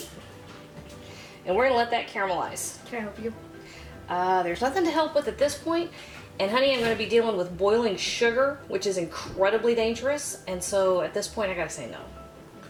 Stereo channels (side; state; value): both; identical; correlation 1.00